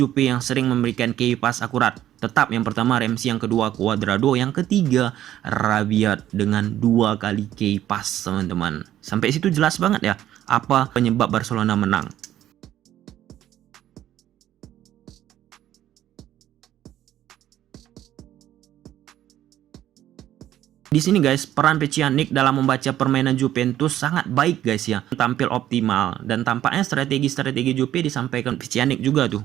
yang sering memberikan key pass akurat. Tetap yang pertama Ramsey, yang kedua Cuadrado, yang ketiga Rabiot dengan 2 kali key pass, teman-teman. Sampai situ jelas banget ya apa penyebab Barcelona menang. Di sini guys, peran Pjanic dalam membaca permainan Juventus sangat baik guys ya. Tampil optimal dan tampaknya strategi-strategi Juve disampaikan Pjanic juga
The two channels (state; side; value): quieter; left; 12.3 dB